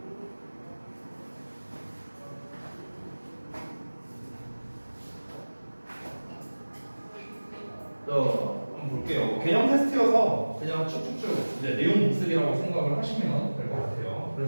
한번 볼게요. 개념 테스트여서 그냥 쭉쭉쭉 이제 내용 복습이라고 생각을 하시면 될 것 같아요.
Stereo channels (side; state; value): both; inverted; correlation -1.00